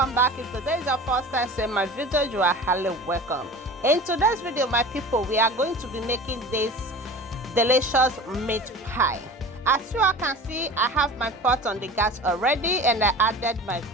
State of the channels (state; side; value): normal; both; correlation 0.36